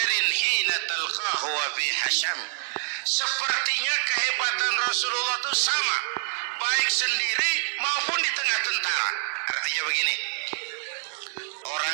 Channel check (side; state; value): left; silent; 61 dB below the other